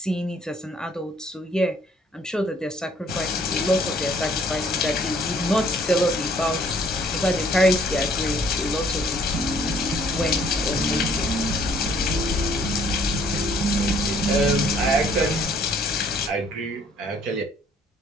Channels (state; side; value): normal; both; correlation 0.61